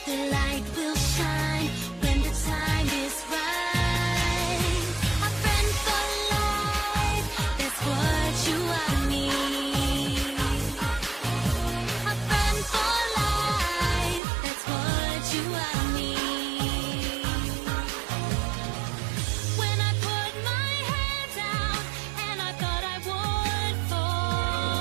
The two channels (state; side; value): drops out; left; at 14.2 s